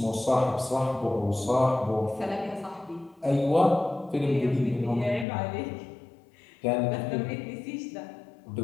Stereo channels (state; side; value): drops out; right; at 5.2 s